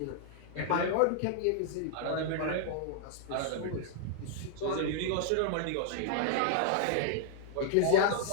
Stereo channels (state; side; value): different; both; correlation -0.01